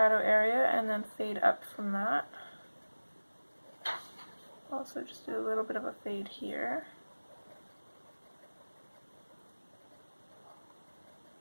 area and then fade up from that. Also just do a little bit of a fade here.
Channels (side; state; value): both; inverted; correlation -1.00